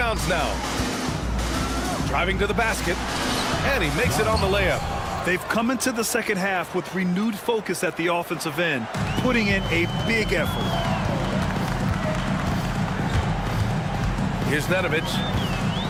now. Driving to the basket, and he makes it on the layup. They've come into the second half with renewed focus at the offensive end, putting in a big effort. Here's Nedovic.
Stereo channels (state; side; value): identical; both; correlation 1.00